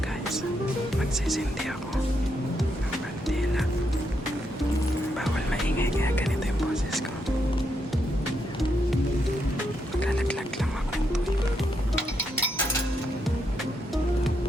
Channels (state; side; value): normal; both; correlation 0.80